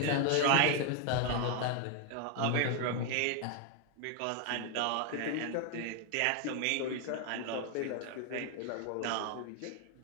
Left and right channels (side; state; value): both; different; correlation 0.01